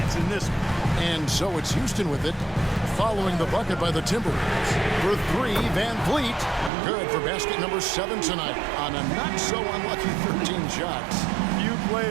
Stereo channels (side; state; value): left; drops out; at 6.7 s